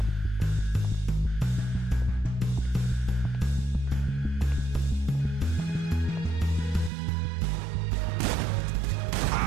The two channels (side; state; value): left; drops out; at 6.9 s